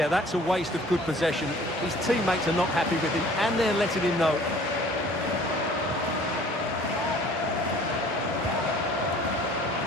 that's a waste of good possession. His teammates are not happy with him, and they're letting him know.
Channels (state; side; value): normal; both; correlation 0.51